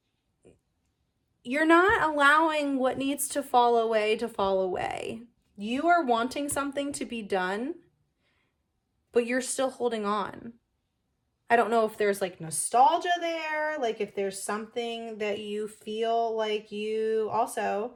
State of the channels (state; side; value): identical; both; correlation 1.00